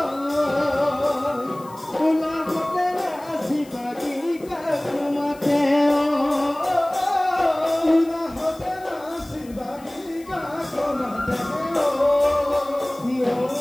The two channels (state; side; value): noise; left; hiss, 24 dB below the sound